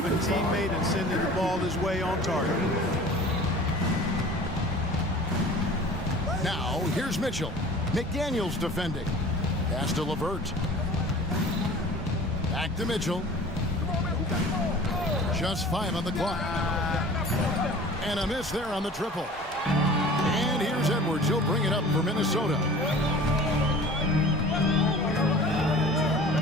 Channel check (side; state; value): both; normal; correlation 0.43